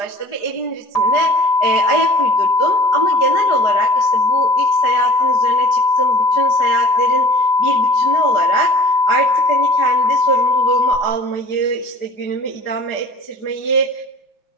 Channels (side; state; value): right; late; 4.9 ms